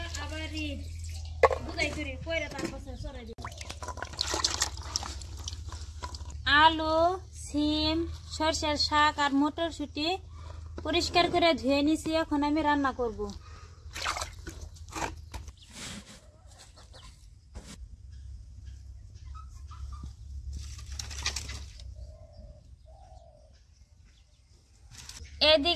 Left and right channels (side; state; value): both; identical; correlation 1.00